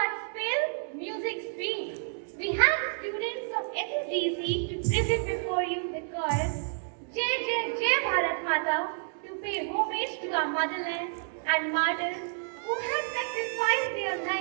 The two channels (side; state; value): left; silent; digital silence